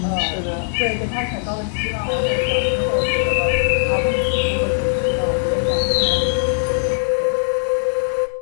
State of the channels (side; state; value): right; silent; digital silence